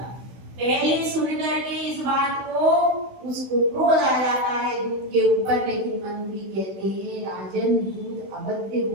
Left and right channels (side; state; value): left; late; 16 ms